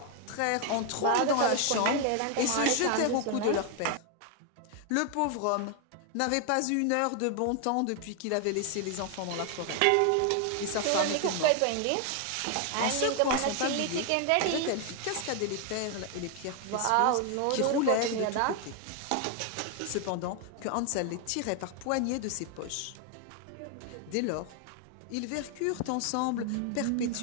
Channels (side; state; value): both; different; correlation 0.00